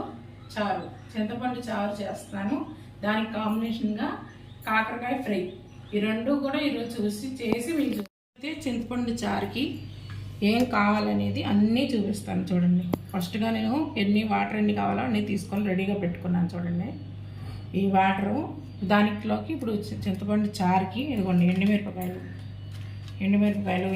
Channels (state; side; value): identical; both; correlation 1.00